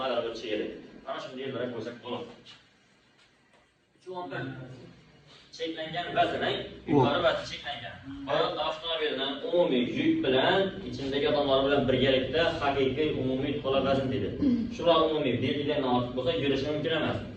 aylab o'tishi kerak. Ana shunday yo'llarga qo'ysak bo'ladi. 311 cheklangan vaznning yuqori vazni cheklangan. Hayot avtomobilining umumiy yuk bilan ichindagi odamlar bilan birgalikda haqiqiy umumiy to'la vazn dedi. Shular umumiy belgilardan ortiq bo'lsa yurishi mumkin emas.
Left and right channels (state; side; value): identical; both; correlation 1.00